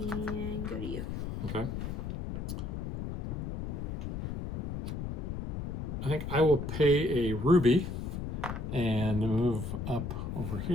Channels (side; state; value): left; noise; rumble, 4 dB below the sound